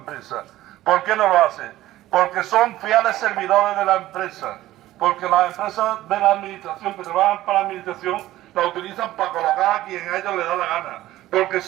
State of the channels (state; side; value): quieter; left; 15.2 dB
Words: ¿Por qué no lo hace? Porque son fieles servidores de la empresa, porque las empresas de la administración, que trabajan para la administración, la utilizan para colocar a quien a ellos les da la gana, porque